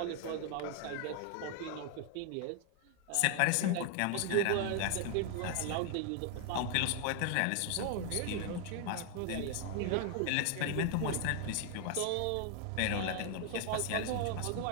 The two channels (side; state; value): both; different; correlation 0.00